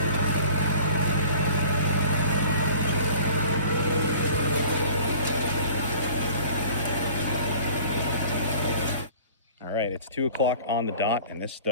Alright, it's 2 o'clock on the dot, and this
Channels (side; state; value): both; inverted; correlation -0.46